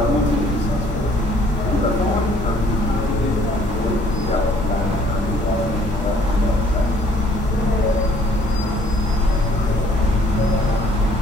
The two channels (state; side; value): normal; both; correlation 0.60